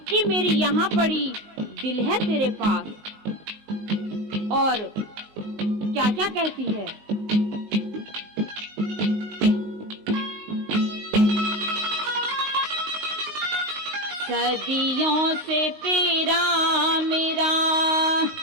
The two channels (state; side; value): late; left; 19 ms